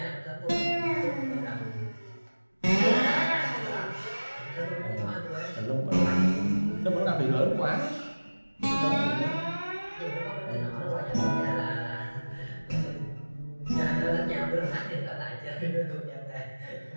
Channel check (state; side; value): inverted; both; correlation -1.00